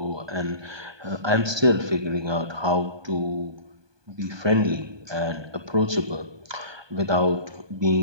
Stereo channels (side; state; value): left; late; 1.2 ms